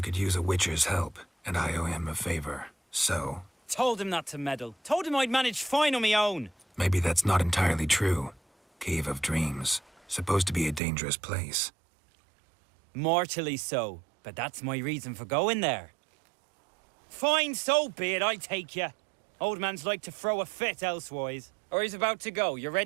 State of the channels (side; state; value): left; drops out; at 10.8 s